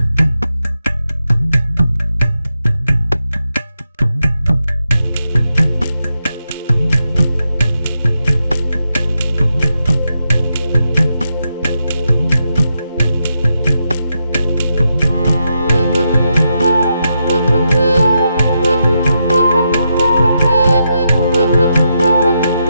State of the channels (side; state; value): both; inverted; correlation -0.84